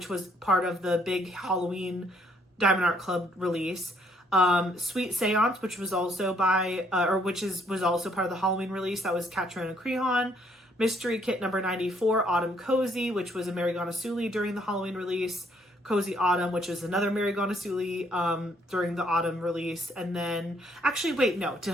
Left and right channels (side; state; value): both; normal; correlation 0.67